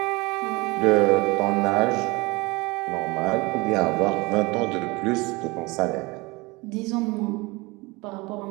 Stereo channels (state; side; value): quieter; left; 24.3 dB